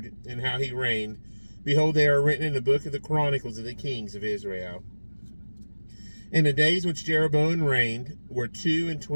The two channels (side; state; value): both; inverted; correlation -1.00